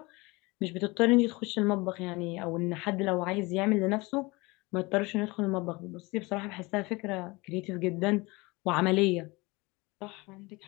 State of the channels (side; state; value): right; quieter; 24.2 dB